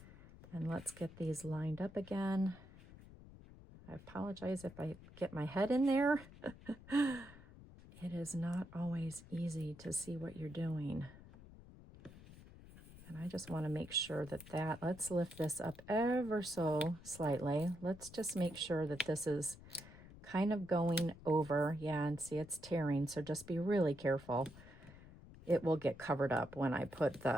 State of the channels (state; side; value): noise; left; rumble, 18 dB below the sound